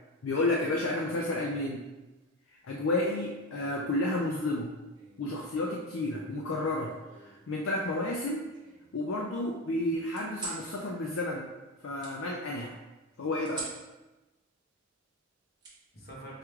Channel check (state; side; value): normal; both; correlation 0.18